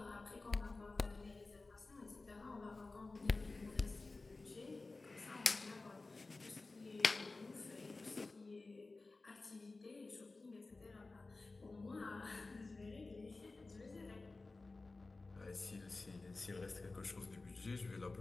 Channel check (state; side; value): quieter; right; 3.5 dB